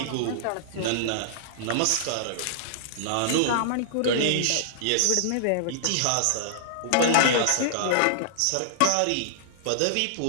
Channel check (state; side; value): different; both; correlation -0.01